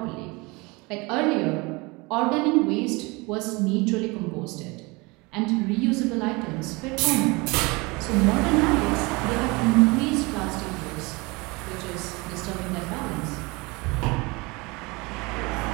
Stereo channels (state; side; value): quieter; left; 25.6 dB